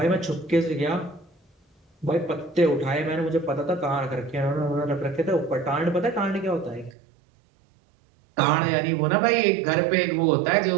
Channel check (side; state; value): left; drops out; at 7.0 s